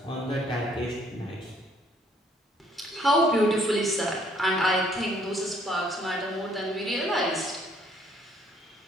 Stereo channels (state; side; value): normal; both; correlation 0.63